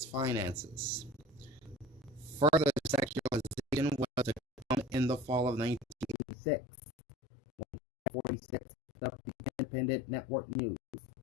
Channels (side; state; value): right; drops out; at 6.2 s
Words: finances. Further secularization was to come in the fall of 1986, when 46 picked up the Independent Network News,